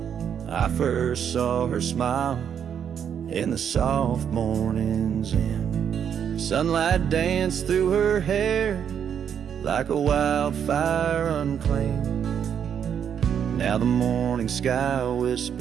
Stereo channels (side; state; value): left; quieter; 8.3 dB